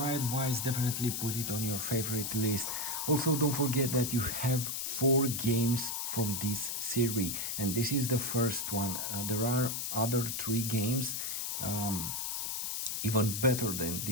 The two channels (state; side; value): noise; left; hiss, 2 dB below the sound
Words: advice, definitely put it on your favorite list. Also, don't forget that you have 4 games from this series, and this is the first one. There are other 3 games, even better than